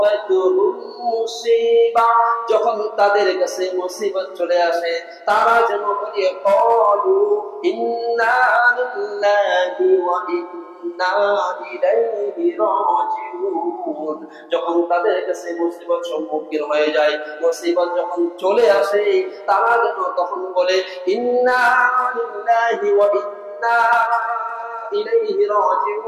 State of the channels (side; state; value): both; identical; correlation 1.00